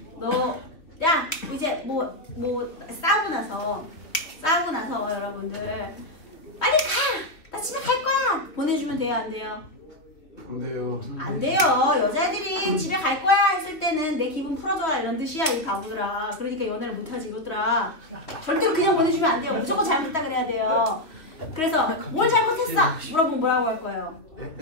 너, 야, 이제 뭐 싸우고 나서 여러분들 빨리 가! 나 집에 갈 거야! 보내주면 돼요, 안 돼요? 안 돼요. 안 돼요. 여자애들이 집에 갈 거야 했을 때는 내 기분 풀어줘라 이런 뜻이야, 이 바보들아. 그러니까 연애를 못하지, 이것들아. 절대로 그냥 보내주면 안 돼요. 무조건 잘못했다 그래야 돼요. 그래서 뭘 잘못했어? 물어보면 뭐라고 할 거예요?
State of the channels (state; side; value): late; right; 2.9 ms